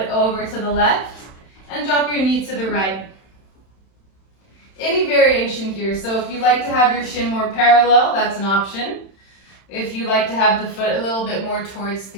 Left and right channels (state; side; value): late; right; 31 ms